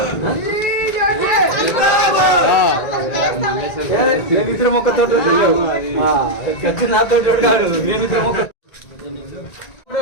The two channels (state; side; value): late; right; 1.9 ms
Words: మేమిద్దరం ఒక్కతో నాతో చూడాడు. మేమిద్దరం ఒక